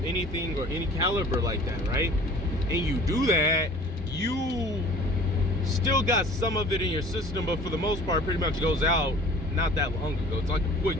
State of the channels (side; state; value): both; normal; correlation 0.47